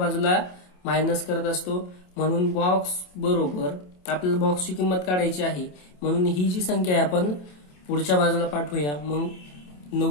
मायनस करत असतो. म्हणून बॉक्स बरोबर आपल्याला बॉक्सची किंमत काढायची आहे, म्हणून ही जी संख्या आहे आपण पुढच्या बाजूला पाठवूया. मग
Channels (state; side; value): late; right; 27 ms